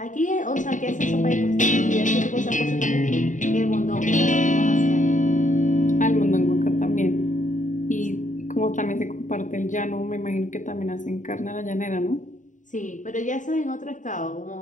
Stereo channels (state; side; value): late; right; 0.37 ms